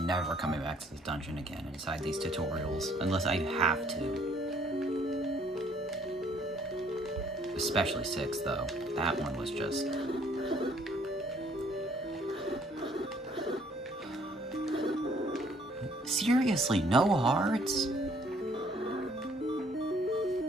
never coming back to this dungeon again inside these tutorials, unless I have to. Especially 6, though. That one was just... Seriously, no hearts?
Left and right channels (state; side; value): normal; both; correlation 0.62